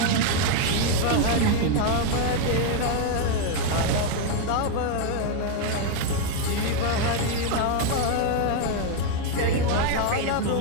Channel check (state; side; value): different; both; correlation 0.01